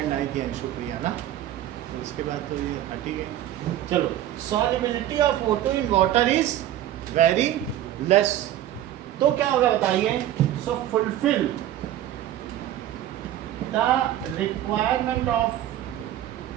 आई थी अंशुप्रिया ना, तो इसके बाद तो ये हट ही गई। चलो, solubility of O2 in water is very less, तो क्या होगा बताइए? So fulfil the requirement of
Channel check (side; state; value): left; quieter; 12.6 dB